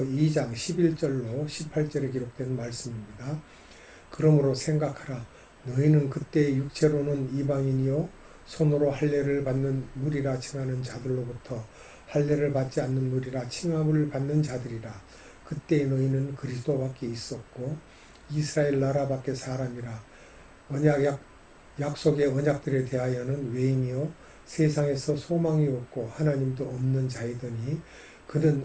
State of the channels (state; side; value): identical; both; correlation 1.00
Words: 2장 11절로 18절에 기록된 말씀입니다. 그러므로 생각하라. 너희는 그때 육체로는 이방인이요 손으로 할례를 받는 무리라 칭하는 자들로부터 할례를 받지 않는 무리라 칭함을 받는 자들이라. 그때 너희는 그리스도 밖에 있었고 이스라엘 나라 밖에 사람이라. 약속의 언약들에 대하여는 외인이요 세상에서 소망이 없고 하나님도 없는 자이더니 그는